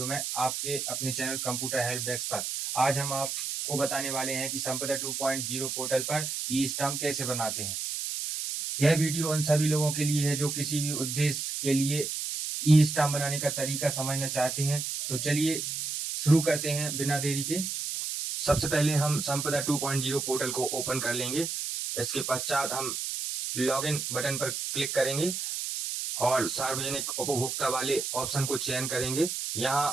में आपके अपने चैनल कंप्यूटर हेल्प डेस्क पर। आज हम आपको बताने वाले हैं कि संपदा 2.0 पोर्टल पर ई स्टाम्प कैसे बनाते हैं। यह वीडियो उन सभी लोगों के लिए है जो किसी भी उद्देश्य के लिए ई स्टाम्प बनाने का तरीका समझना चाहते हैं। तो चलिए शुरू करते हैं बिना देरी के। सबसे पहले हम संपदा 2.0 पोर्टल को ओपन कर लेंगे। इसके पश्चात हम लॉगिन बटन पर क्लिक करेंगे और सार्वजनिक उपभोक्ता वाले ऑप्शन को चयन करेंगे। यहाँ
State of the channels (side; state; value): right; noise; hiss, 3 dB below the sound